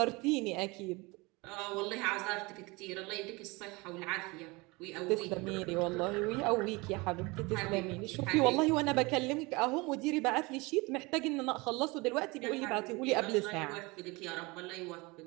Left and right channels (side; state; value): left; quieter; 25.0 dB